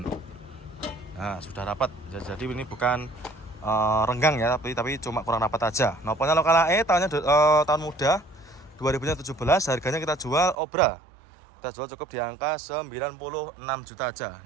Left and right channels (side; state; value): left; drops out; at 10.6 s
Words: Nah, sudah rapat. Jadi ini bukan renggang ya, tapi cuma kurang rapat aja. Nopolnya lokal AE, tahun muda 2017. Harganya kita jual obra. Kita jual cukup di angka 96 juta aja.